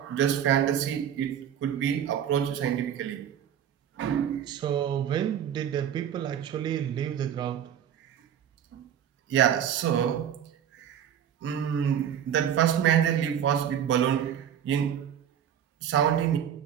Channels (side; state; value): left; quieter; 9.4 dB